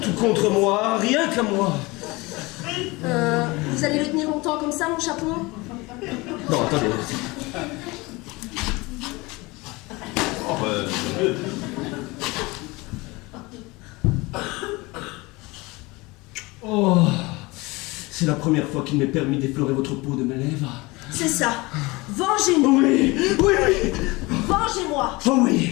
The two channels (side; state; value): right; quieter; 23.4 dB